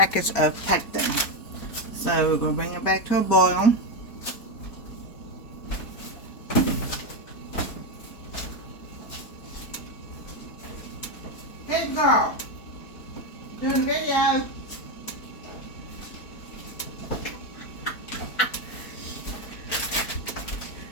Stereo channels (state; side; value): late; right; 4.4 ms